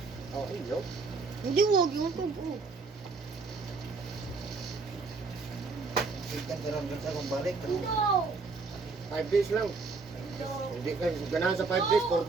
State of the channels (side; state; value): left; quieter; 4.2 dB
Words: Oh, iyo. Hindi wag yung tubo. Ikan karon sa kong balik. No! 5 days lang. Hindi ka ganahan sa 5 days, 4